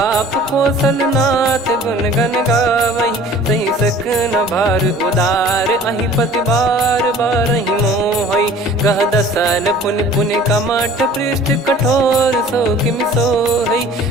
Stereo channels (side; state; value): both; normal; correlation 0.48